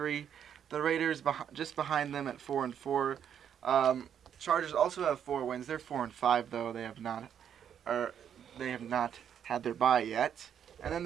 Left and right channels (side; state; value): left; quieter; 8.8 dB